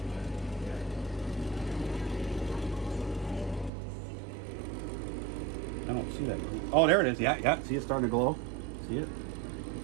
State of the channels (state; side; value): drops out; left; at 3.7 s